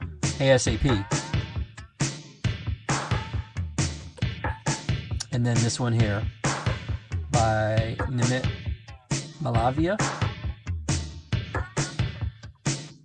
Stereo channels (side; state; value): both; identical; correlation 1.00